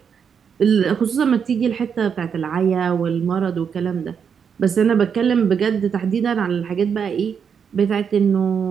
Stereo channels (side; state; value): left; quieter; 7.0 dB